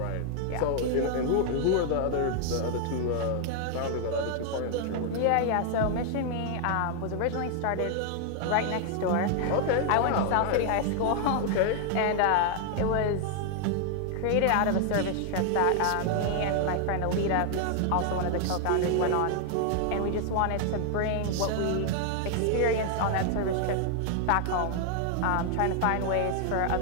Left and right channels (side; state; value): both; different; correlation 0.00